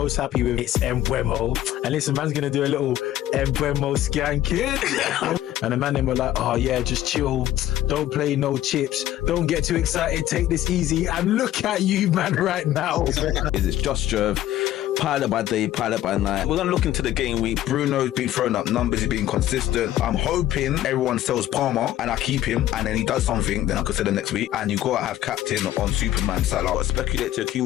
happy with is Mbeumo. And listen, man's gonna do a little Mbeumo skanking. And the man them were like, oh yeah, just chill. Don't play no chips. Don't get too excited. Take this easy. And look at you, man, right now. It's just Jerv. Pilot by day, pilot by night. We're gonna look into the game week. Bruno's been throwing up numbers, he's been consistent. I'm hoping everyone sells Palmer and I keep him, and then he does something, then I consider next week. And you gotta have captain on Superman Salah. Speculate to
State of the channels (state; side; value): quieter; right; 13.2 dB